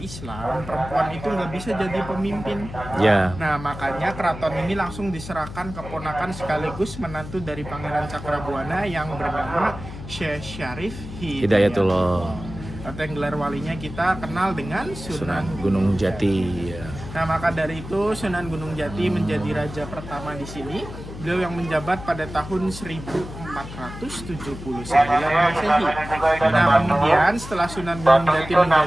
perempuan itu nggak bisa jadi pemimpin. Ya. Nah, makanya keraton ini langsung diserahkan keponakan sekaligus menantu dari Pangeran Cakrabuana yang bernama Syekh Syarif Hidayatullah. atau yang gelar walinya kita kenal dengan Sunan Sunan. Gunung Jati. Ya. Nah, maka dari itu Sunan Gunung Jati menjadi raja pertama di sini. Beliau yang menjabat pada tahun 1479 Masehi. Nah, kemudian setelah Sunan Gunung Jati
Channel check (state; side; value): noise; left; hum, 11 dB below the sound